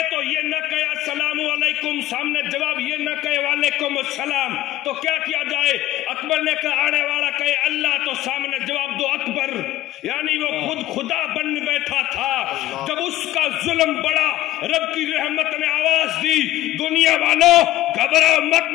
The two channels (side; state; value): right; quieter; 14.9 dB